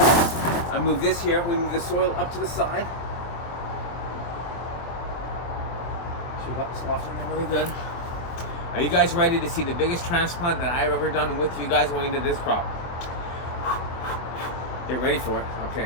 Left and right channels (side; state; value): right; late; 23 ms